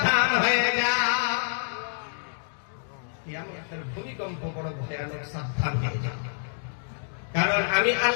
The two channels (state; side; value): silent; right; digital silence